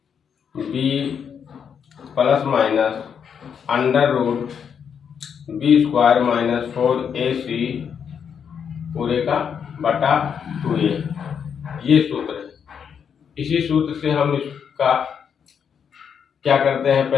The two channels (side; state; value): right; quieter; 7.4 dB